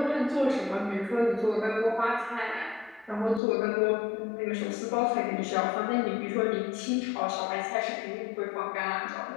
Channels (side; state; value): right; drops out; at 3.4 s